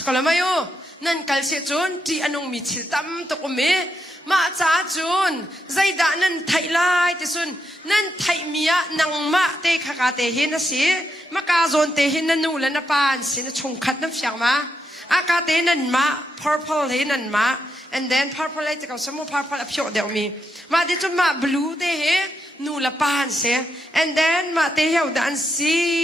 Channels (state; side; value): normal; both; correlation 0.82